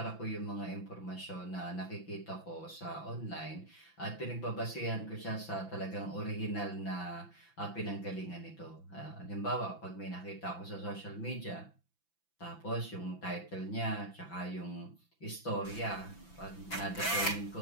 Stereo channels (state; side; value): late; right; 5.9 ms